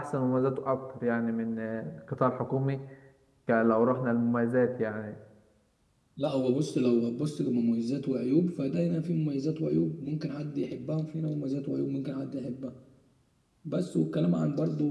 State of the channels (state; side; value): identical; both; correlation 1.00